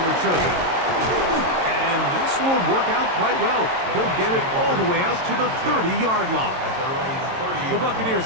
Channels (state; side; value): late; left; 22 ms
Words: return. And this will work out quite well. He'll get it all the way out to the 30-yard line. The